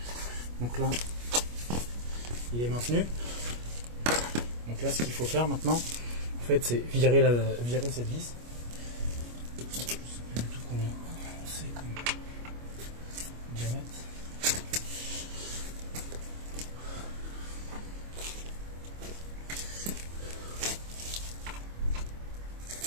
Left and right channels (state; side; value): late; left; 25 ms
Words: Donc là, il est maintenu. Donc là, ce qu'il faut faire maintenant, en fait, c'est virer cette vis. Je sais plus du tout combien c'est comme diamètre.